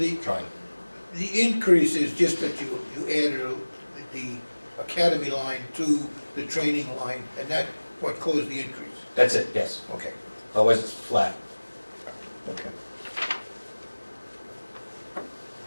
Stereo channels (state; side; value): inverted; both; correlation -1.00